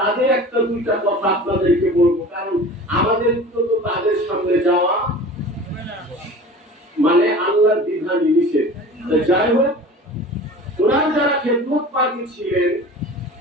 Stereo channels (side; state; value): both; normal; correlation 0.39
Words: একটা দুইটা কথা আপনাদেরকে বলবো। কারণ আমাদের তো তাদের সামনে যাওয়া মানে আল্লাহর বিধান নিষেধ। যাই হোক, ওনার যারা খেদমত পাখি ছিলেন